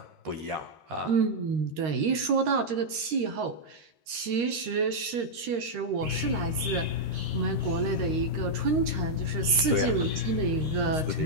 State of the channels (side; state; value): left; late; 13 ms